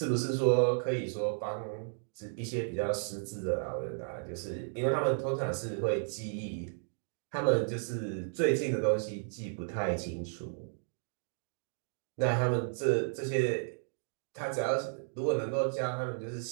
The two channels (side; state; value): left; silent; digital silence